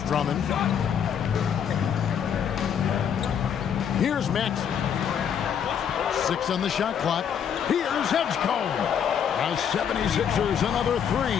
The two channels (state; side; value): quieter; right; 8.2 dB